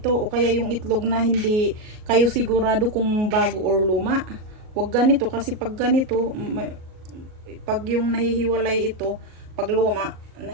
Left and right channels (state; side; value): late; left; 38 ms